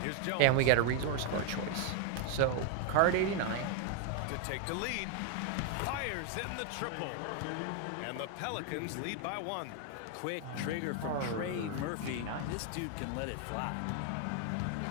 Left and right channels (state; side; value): different; both; correlation 0.00